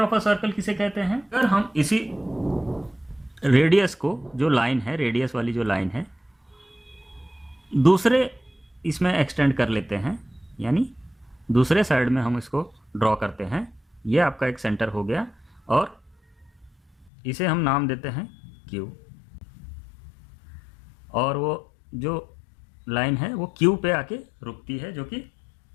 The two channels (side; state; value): right; drops out; at 17.1 s